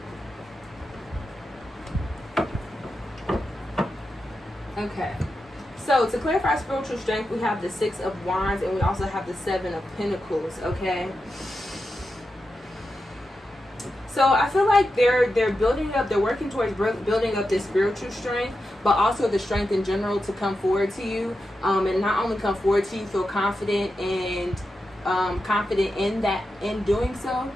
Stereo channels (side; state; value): both; normal; correlation 0.89